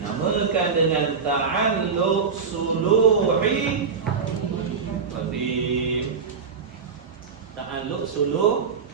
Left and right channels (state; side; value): quieter; left; 5.6 dB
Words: dengan ta'alluq suluhi qadim. Ta'alluq